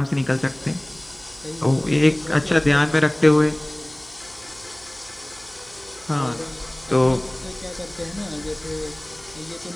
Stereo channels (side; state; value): right; noise; hum, 24 dB below the sound